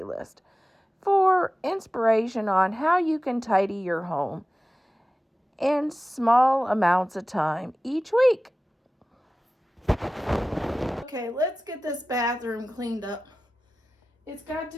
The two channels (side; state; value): both; normal; correlation 0.96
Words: for inspiration on how you can tidy your home in small amounts of time each week. Okay, let's get this bathroom cleaned up. It's got